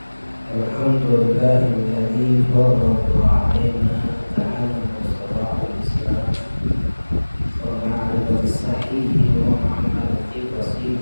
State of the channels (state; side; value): inverted; both; correlation -1.00